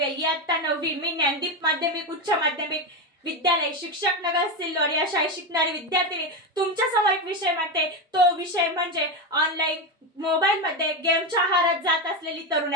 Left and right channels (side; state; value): both; normal; correlation 0.14